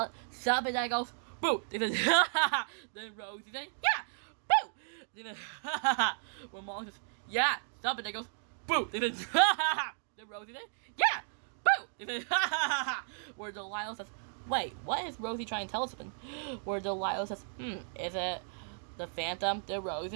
Something that goes, boo. Then Rosie says, yeah, boo. Then when Molly says, yeah, something that goes, boo. Then Rosie says, yeah, boo. Where Delilah says, wait, what is Rosie trying to tell us? Where Delilah says, is it the Phantom? Then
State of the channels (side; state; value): left; silent; digital silence